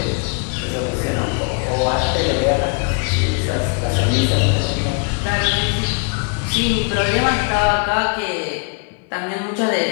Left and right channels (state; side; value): quieter; right; 36.5 dB